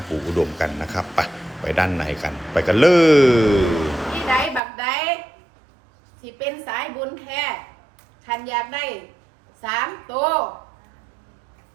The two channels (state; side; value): drops out; left; at 4.6 s